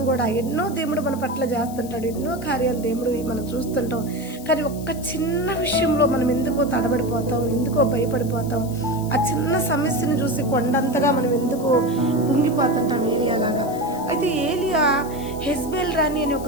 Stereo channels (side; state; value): left; noise; hiss, 17 dB below the sound